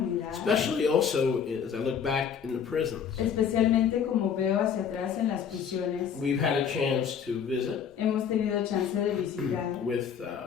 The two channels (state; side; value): quieter; right; 7.5 dB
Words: especially also as I look back in the prisons. especialmente como veo hacia atrás en las prisiones. We've had a chance to visit Hemos tenido chance de visitar with